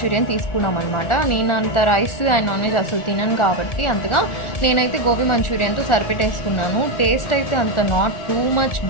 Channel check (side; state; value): right; late; 1.4 ms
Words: తీసుకున్నాం అనమాట. నేను అంత రైస్ అండ్ నాన్ వెజ్ అసలు తినను కాబట్టి అంతగా నేనైతే గోబీ మంచూరియన్తో సరిపెట్టేసుకున్నాను. టేస్ట్ అయితే అంత నాట్ టూ మచ్